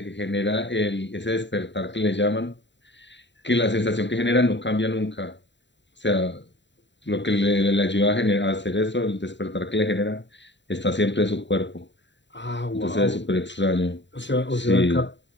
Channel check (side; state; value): right; late; 0.52 ms